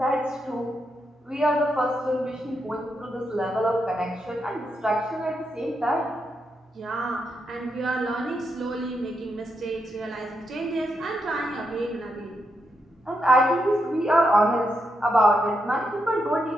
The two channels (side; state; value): both; normal; correlation 0.82